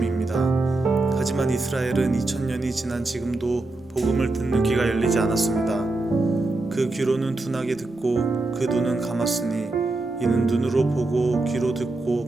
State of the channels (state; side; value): quieter; left; 3.0 dB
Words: 하지만 이스라엘은 2000년이 지난 지금도 복음을 듣는 귀가 열리지 않았습니다. 그 귀로는 둔하게 듣고 그 눈은 감았으니 이는 눈으로 보고 귀로